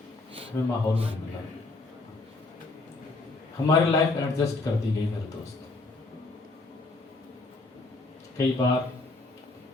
हमें माहौल नहीं मिला, हमारी लाइफ एडजस्ट कर दी गई मेरे दोस्त। कई बार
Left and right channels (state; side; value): quieter; right; 3.3 dB